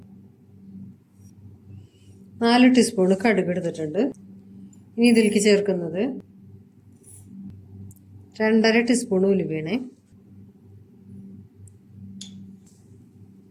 4 ടീസ്പൂൺ കടുക് എടുത്തിട്ടുണ്ട്. ഇനി ഇതിലേക്ക് ചേർക്കുന്നത് 2.5 ടീസ്പൂൺ ഉലുവയാണ്,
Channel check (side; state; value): both; identical; correlation 1.00